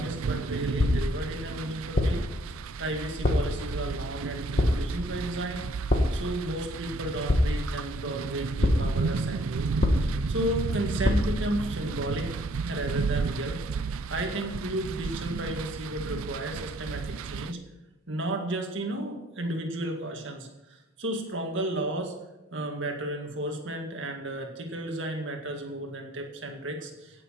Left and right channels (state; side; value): normal; both; correlation 0.63